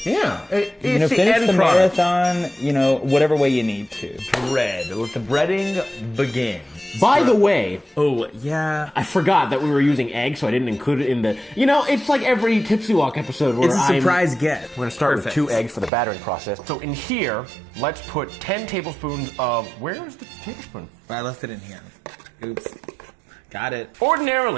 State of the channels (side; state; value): left; drops out; at 15.9 s